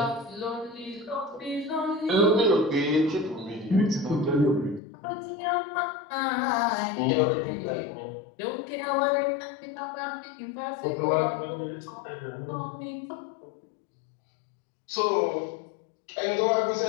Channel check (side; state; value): right; drops out; at 4.8 s